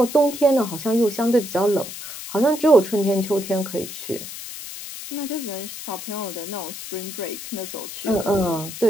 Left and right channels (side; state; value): left; noise; hiss, 10 dB below the sound